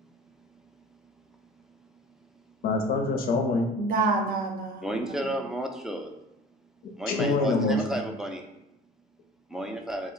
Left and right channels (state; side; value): normal; both; correlation 0.43